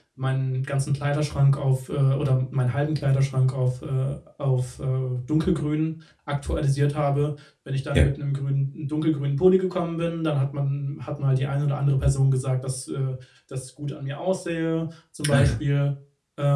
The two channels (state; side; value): identical; both; correlation 1.00